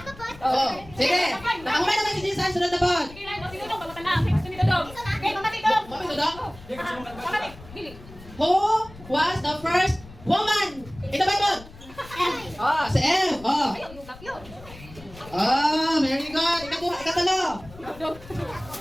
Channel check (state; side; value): noise; left; rumble, 19 dB below the sound